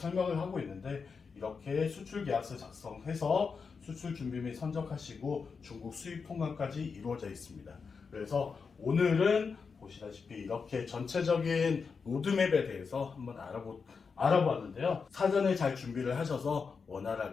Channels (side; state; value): right; quieter; 5.3 dB